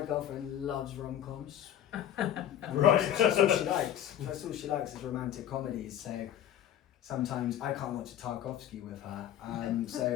girlfriend loves rom-coms. Right. That's all she likes. That's all she likes is romantic comedies. So sometimes I can't watch a Tarkovsky with her.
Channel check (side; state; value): right; quieter; 11.0 dB